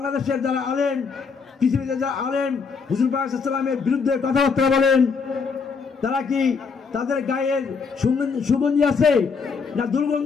যারা আলেম, পৃথিবীতে যারা আলেম হুজুর পাক সাল্লাল্লাহু আলাইহি ওয়াসাল্লামের বিরুদ্ধে কথাবার্তা বলেন, তারা কি তাদের গায়ের সুগন্ধি আছে না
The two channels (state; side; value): quieter; right; 5.3 dB